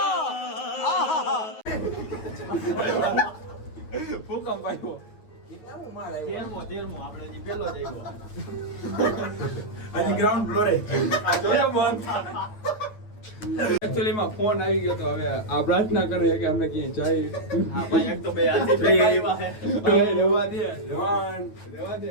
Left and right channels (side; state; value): right; late; 9.4 ms